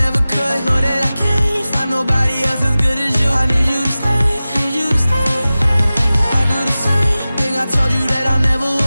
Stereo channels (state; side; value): inverted; both; correlation -0.96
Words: could. Know that I can't find nobody else as good as you. I need you to stay, need you to stay. I do the same thing I told you that I never